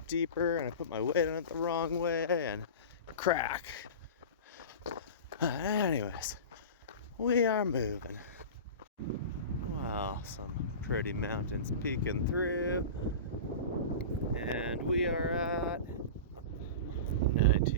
deeper, and I put my weight on it the wrong way and crack. Anyways, we are moving. Wow, some pretty mountains peeking through, and we are at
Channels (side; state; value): both; inverted; correlation -0.31